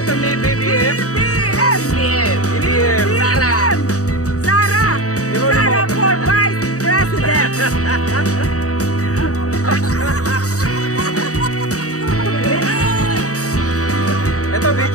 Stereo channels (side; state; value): right; late; 0.66 ms